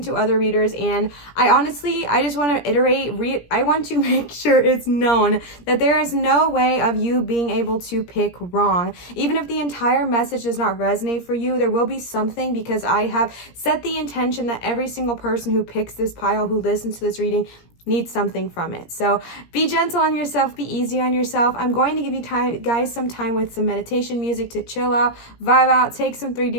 to other readers, and I just want to iterate, I want to make sure it's known that there is no way of you being able to pick wrong. Even if the entire message does not resonate for you, there will be something, because I have set the intention that every single person who picks this pile, who listens to this reading, needs something from it. So be gentle on yourself, be easy on yourself. I'm going to give you guys some time with some meditation music to chill out, vibe out, take some 3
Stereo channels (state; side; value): late; right; 17 ms